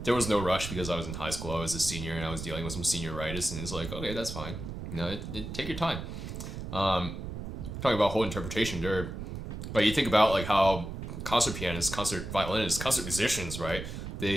there was no rush because I was in high school. I was a senior and I was dealing with some senioritis, and it's like, okay, that's fine. Take your time. Talking about whole interpretation, there. Like you think about like how concert pianists, concert violinists, concert musicians, right?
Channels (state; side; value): noise; right; rumble, 7 dB below the sound